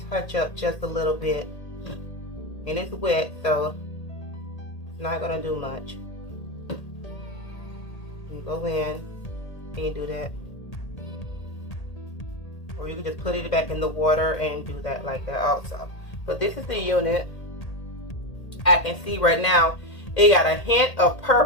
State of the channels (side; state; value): right; late; 1.8 ms